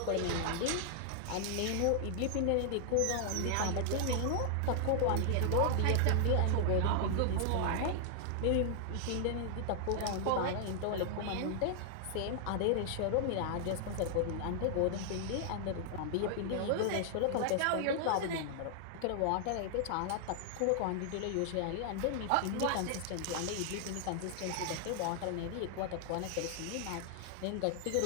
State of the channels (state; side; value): different; both; correlation 0.00